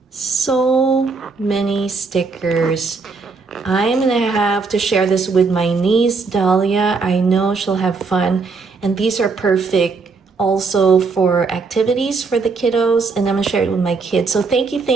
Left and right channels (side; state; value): left; quieter; 4.4 dB